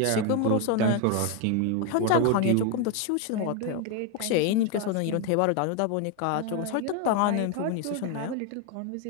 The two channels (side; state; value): both; different; correlation 0.01